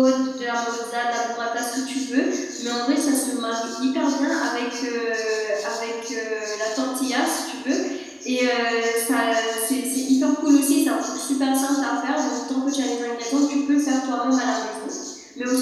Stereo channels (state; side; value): identical; both; correlation 1.00